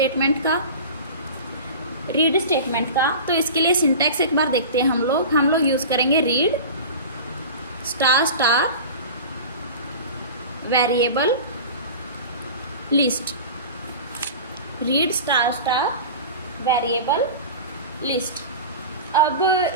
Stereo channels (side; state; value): both; inverted; correlation -0.34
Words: का। तो इसके लिए सिंटैक्स एक बार देखते हैं हम लोग यूज़ करेंगे read star variable list. Read star variable list. अब